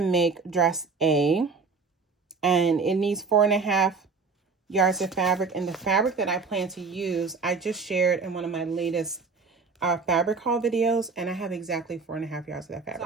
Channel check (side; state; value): left; quieter; 4.7 dB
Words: make dress A, and it needs 4.5 yards of fabric. And the fabric that I plan to use, I just shared in one of my latest fabric haul videos, and I have exactly 4.5 yards of that fabric.